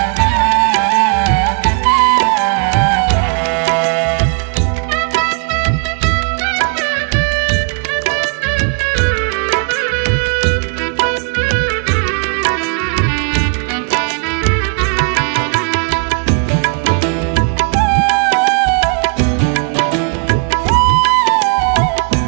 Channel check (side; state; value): left; quieter; 39.7 dB